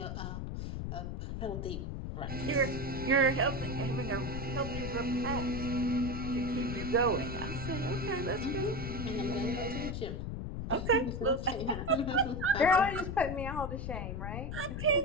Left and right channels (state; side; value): noise; left; rumble, 5 dB below the sound